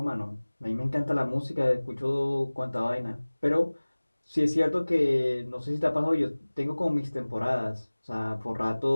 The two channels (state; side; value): inverted; both; correlation -1.00